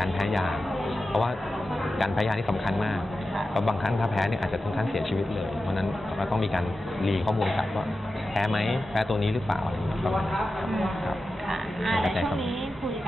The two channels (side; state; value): both; normal; correlation 0.93